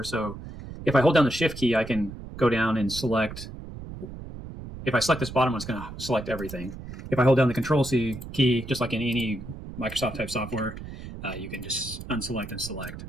So if I hold down the shift key, I can go down and select. If I select this bottom one, it's going to select everything. If I hold down the Control C key, just like in any Microsoft type software, you can just unselect and select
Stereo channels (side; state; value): right; noise; rumble, 11 dB below the sound